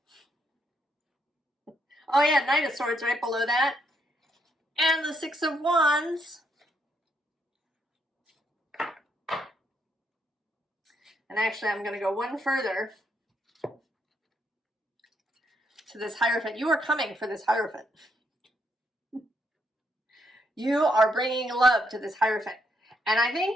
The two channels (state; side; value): normal; both; correlation 0.75